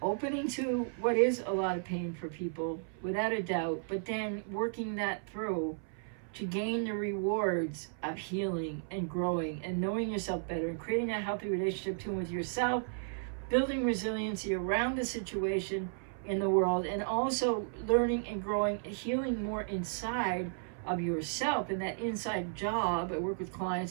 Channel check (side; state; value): left; silent; 55 dB below the other